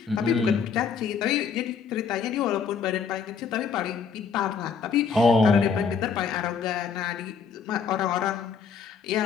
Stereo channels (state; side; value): quieter; right; 6.0 dB